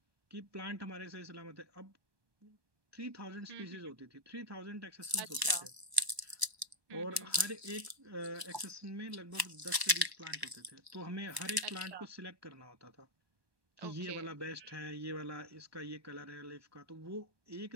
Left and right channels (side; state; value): left; late; 1.0 ms